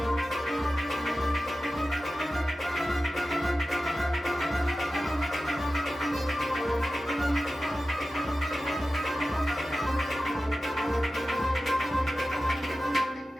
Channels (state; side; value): normal; both; correlation 0.94